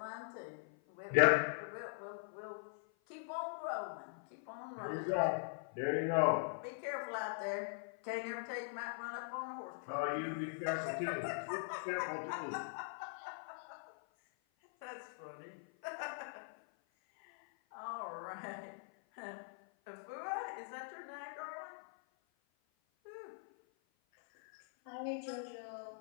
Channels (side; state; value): right; silent; 50 dB below the other